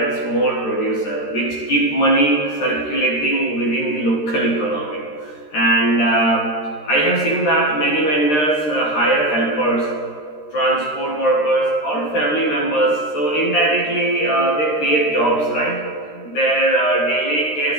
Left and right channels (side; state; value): right; late; 13 ms